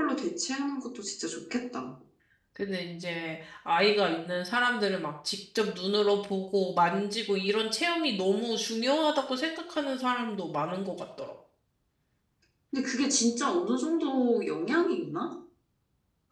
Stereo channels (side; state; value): both; identical; correlation 1.00